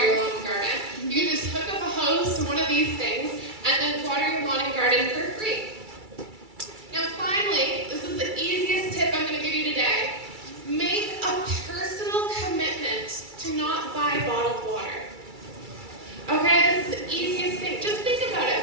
your lawn and garden, you can just hook up a hose to one of these things and then water your lawn and garden for free. Now finally, this is the easiest tip I'm going to give you today. Make a personal commitment to not buy bottled water. Okay, this is the easiest thing. Just think about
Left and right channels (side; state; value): left; late; 2.3 ms